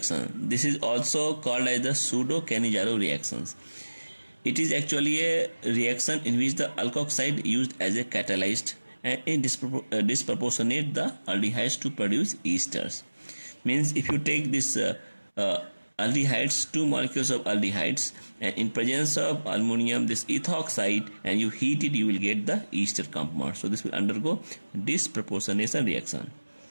This is also called as the pseudo-Cannizzaro reactions. It is actually a reaction in which the alkoxide used as a catalyst and it disproportionate the aldehydes to produce esters. Means if you take this aldehydes, two molecules of aldehydes, and in presence of aluminum this ethoxide, and you heat it, you will get the ester compound. So this will undergo disproportionation reaction.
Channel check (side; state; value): both; inverted; correlation -1.00